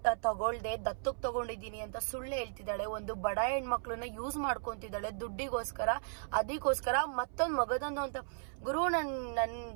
ತಗೊಳ್ದೆ ದತ್ತಕ್ಕೆ ತಗೊಂಡಿದ್ದೀನಿ ಅಂತ ಸುಳ್ಳು ಹೇಳ್ತಿದ್ದಾಳೆ. ಒಂದು ಬಡ ಹೆಣ್ಮಕ್ಳನ್ನ ಯೂಸ್ ಮಾಡ್ಕೊಂತಿದ್ದಾಳೆ ದುಡ್ಡಿಗೋಸ್ಕರ. ಅದಕ್ಕೋಸ್ಕರ ಮತ್ತೊಂದು ಮಗದೊಂದು ಅಂತ. ಗುರು, ನನ್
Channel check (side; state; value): left; silent; 54 dB below the other